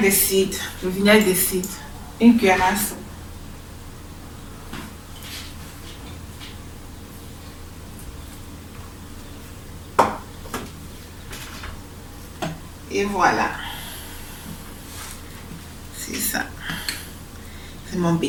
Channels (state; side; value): identical; both; correlation 1.00